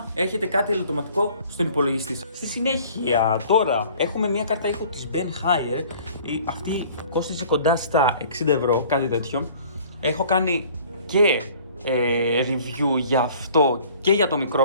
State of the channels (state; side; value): inverted; both; correlation -0.52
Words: έχετε κάτι ελαττωματικό στον υπολογιστή σας. Στη συνέχεια, τώρα έχουμε μια κάρτα ήχου της Ben Hire. Αυτή κόστιζε κοντά στα 60 ευρώ, κάτι τέτοιο. Έχω κάνει και review για αυτό και για το